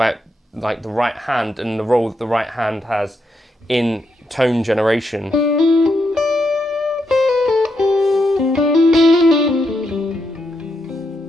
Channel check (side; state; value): both; normal; correlation 0.81